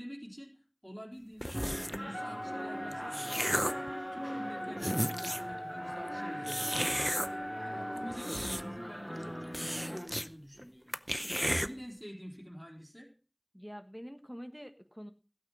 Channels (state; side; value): identical; both; correlation 1.00